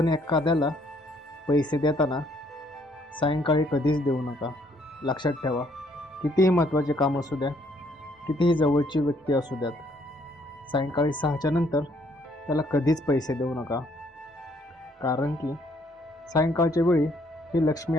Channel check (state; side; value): normal; both; correlation 0.67